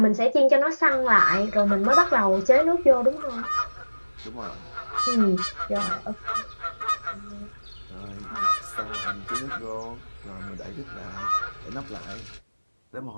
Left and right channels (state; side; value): inverted; both; correlation -1.00